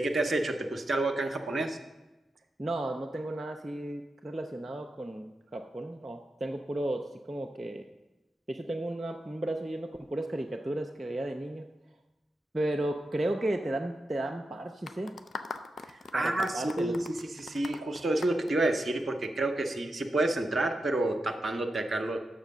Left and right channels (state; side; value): normal; both; correlation 0.88